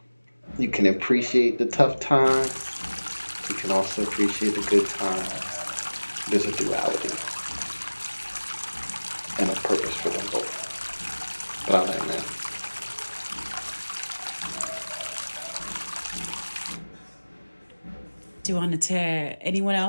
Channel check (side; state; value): both; inverted; correlation -1.00